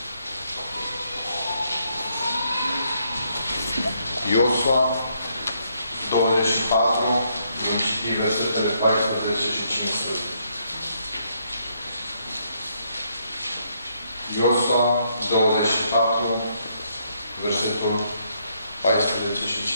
Iosua 24, vom citi versetele 14 și 15. Iosua 24, versetul 14 și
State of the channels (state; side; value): inverted; both; correlation -0.74